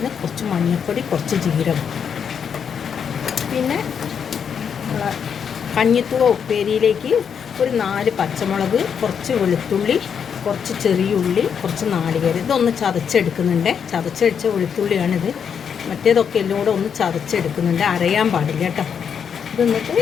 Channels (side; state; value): right; quieter; 7.3 dB